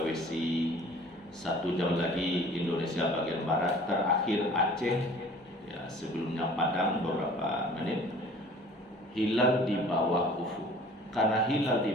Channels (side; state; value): both; normal; correlation 0.49